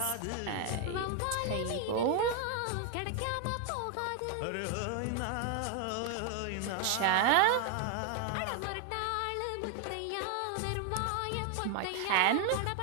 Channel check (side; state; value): both; different; correlation 0.01